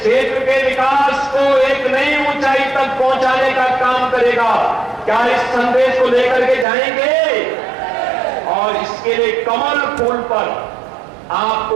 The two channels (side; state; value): left; drops out; at 6.7 s